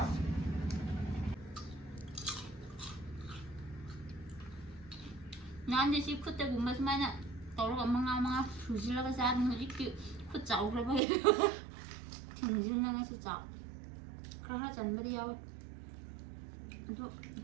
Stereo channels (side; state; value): left; drops out; at 11.0 s